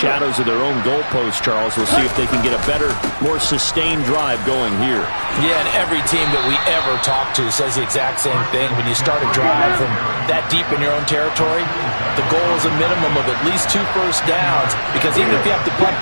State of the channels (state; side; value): inverted; both; correlation -1.00